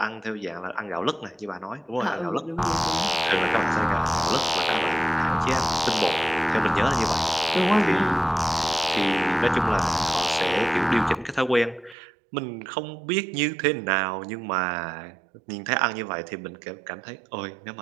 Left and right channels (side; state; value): left; drops out; at 12.0 s